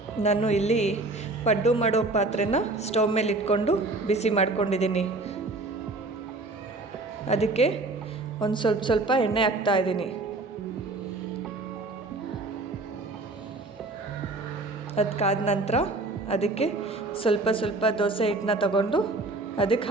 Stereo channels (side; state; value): left; quieter; 3.1 dB